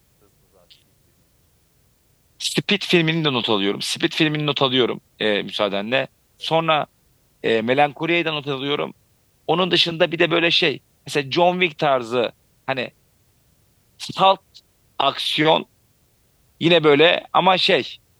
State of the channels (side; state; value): both; identical; correlation 1.00